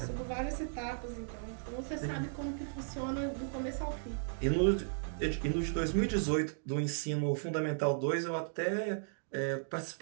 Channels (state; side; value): silent; left; digital silence